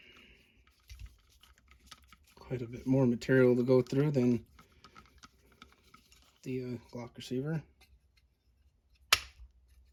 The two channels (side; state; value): both; identical; correlation 1.00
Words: Quite a bit more material to go through than the Glock receiver.